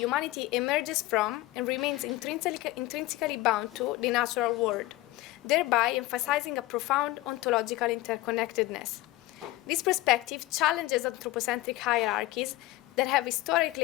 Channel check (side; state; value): right; quieter; 18.1 dB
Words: emerges from and remains intrinsically bound to the natural world, thereby emphasizing a profound ontological interconnectedness. This perspective challenges anthropocentric hierarchies that have